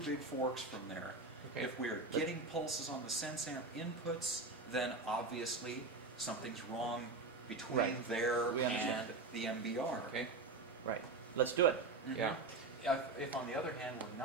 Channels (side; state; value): left; quieter; 3.6 dB